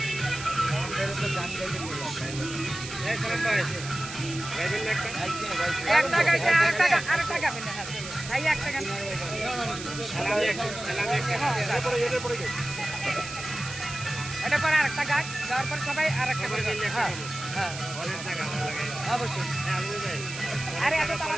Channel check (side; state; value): right; noise; hiss, 10 dB below the sound